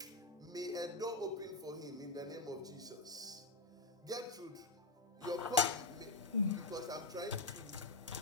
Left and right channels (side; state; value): right; quieter; 3.3 dB